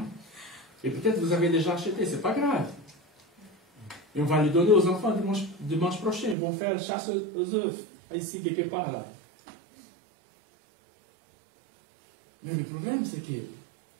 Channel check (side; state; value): left; drops out; at 6.4 s